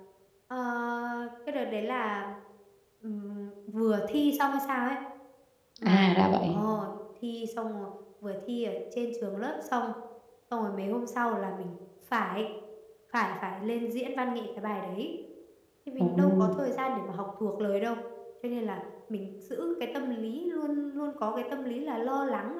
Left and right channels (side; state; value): both; identical; correlation 1.00